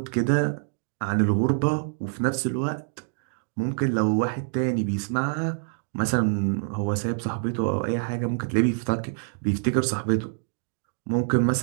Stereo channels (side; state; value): left; silent; digital silence